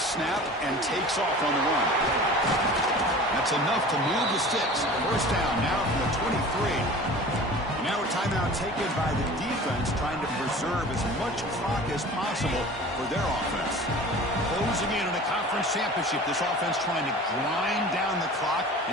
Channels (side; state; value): both; normal; correlation 0.40